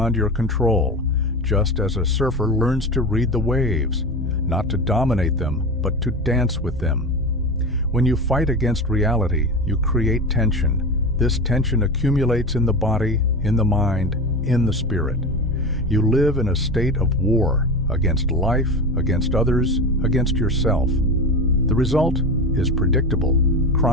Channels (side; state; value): both; normal; correlation 0.25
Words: your control, just as a surfer learns to read the waves, not to dominate them, but to dance with them. When you fight against reality, you create tension. This tension accumulates in the body, in the mind, in the spirit. You live in a state of war against life, against others, against yourself. The result is predictable: